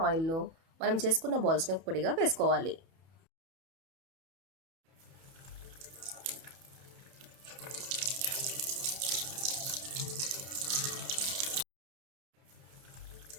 ఆయిల్లో మనం చేసుకున్న బాల్స్ని పొడిగా వేసుకోవాలి.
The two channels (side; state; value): left; late; 31 ms